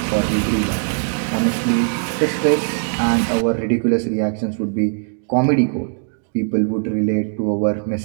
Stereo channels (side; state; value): left; silent; digital silence